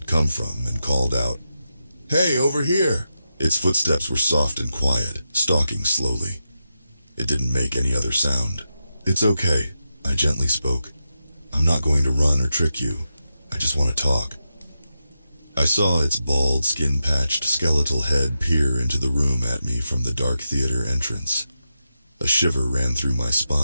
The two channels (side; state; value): both; inverted; correlation -0.88